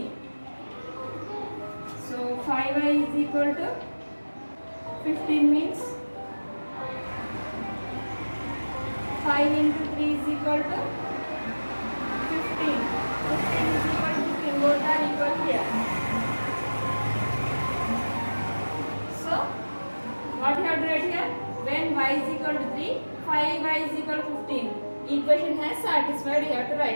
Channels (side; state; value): both; inverted; correlation -1.00